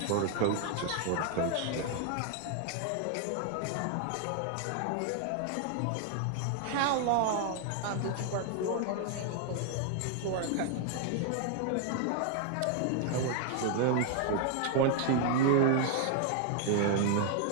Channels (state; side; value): different; both; correlation 0.00